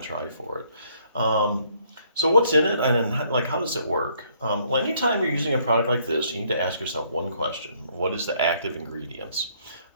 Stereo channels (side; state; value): both; inverted; correlation -0.66